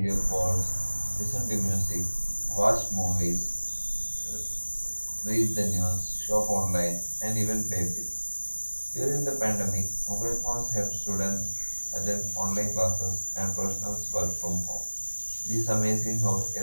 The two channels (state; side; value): inverted; both; correlation -1.00